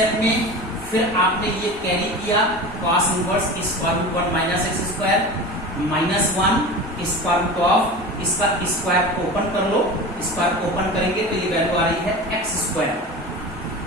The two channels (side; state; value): both; normal; correlation 0.32